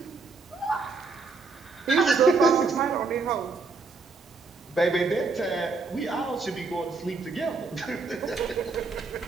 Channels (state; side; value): quieter; left; 4.2 dB